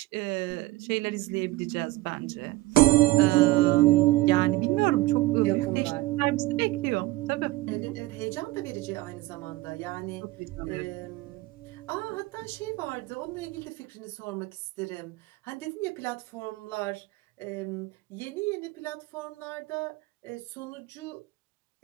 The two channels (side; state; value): left; quieter; 18.8 dB